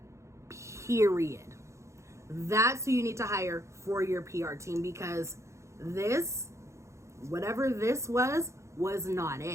Period. That's who you need to hire for your PR team, because this, whatever this was not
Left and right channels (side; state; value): left; late; 0.14 ms